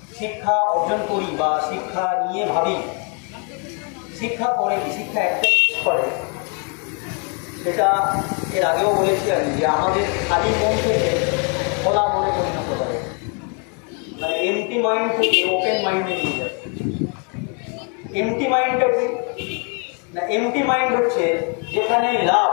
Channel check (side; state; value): right; quieter; 36.8 dB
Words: শিক্ষা অর্জন করি বা শিক্ষা নিয়ে ভাবি, শিক্ষা করে কি, শিক্ষা একটাই করে, সেটা এর আগেও বলেছি আমি, যে আমাদের খালি মন থেকে খোলা মনে পরিণত করে, মানে এমটি মাইন্ড থেকে ওপেন মাইন্ডে নিয়ে যায়। এমটি মাইন্ডটা কি না, এমটি মাইন্ড হচ্ছে যেখানেই লাভ,